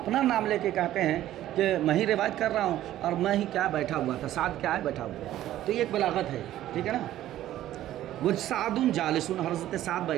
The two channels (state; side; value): quieter; left; 13.4 dB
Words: نام لے کے کہتے ہیں کہ میں ہی روایت کر رہا ہوں اور میں ہی کیا بیٹھا ہوا تھا، سعد کیا ہے؟ بیٹھا ہوا، تو یہ ایک بلاغت ہے، ٹھیک ہے نا۔ وہ سعد جالس، حضرت سعد